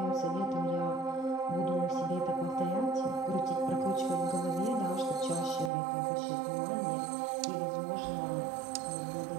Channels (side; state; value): left; drops out; at 5.7 s